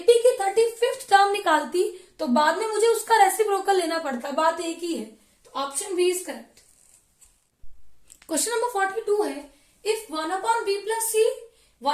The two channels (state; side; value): identical; both; correlation 1.00